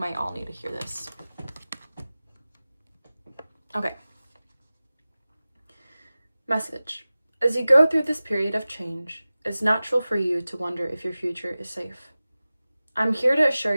all need to hear this. Okay. Message. As you go through this period of change, it's natural for you to wonder if your future is safe. I'm here to assure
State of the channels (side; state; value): both; inverted; correlation -0.97